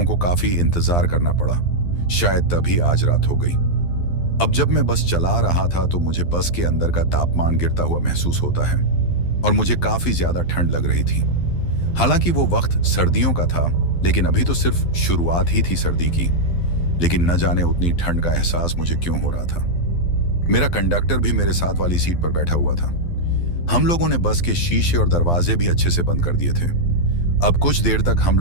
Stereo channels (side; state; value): right; late; 12 ms